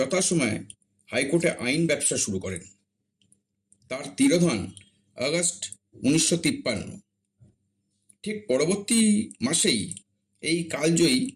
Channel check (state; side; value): identical; both; correlation 1.00